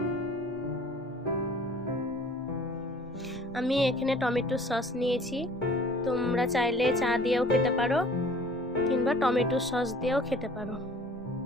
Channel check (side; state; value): both; normal; correlation 0.50